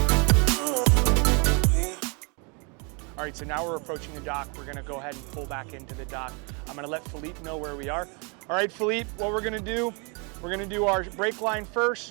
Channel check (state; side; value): quieter; left; 33.6 dB